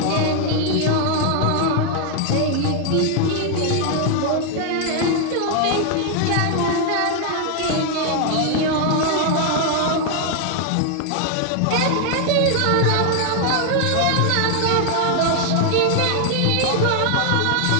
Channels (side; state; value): both; different; correlation 0.00